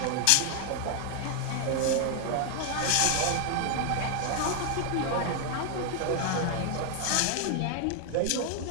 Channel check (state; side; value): different; both; correlation 0.00